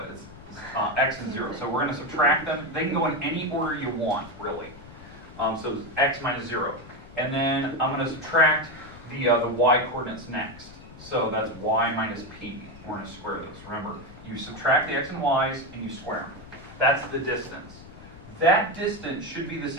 it's x and 0. So we're going to subtract them. They can go in any order you want, really. So it's x minus 0. And then I'm going to subtract the y coordinates next. So that's y minus p. We're going to square those. Remember, you subtract the x and y's and you square them. That's the distance. That distance should be the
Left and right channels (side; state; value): left; noise; rumble, 18 dB below the sound